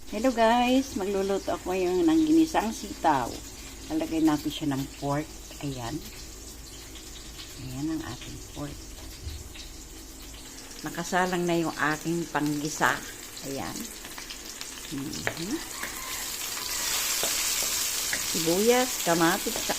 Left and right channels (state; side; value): identical; both; correlation 1.00